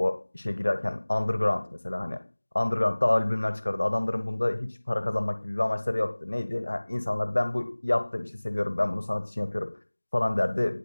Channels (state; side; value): inverted; both; correlation -1.00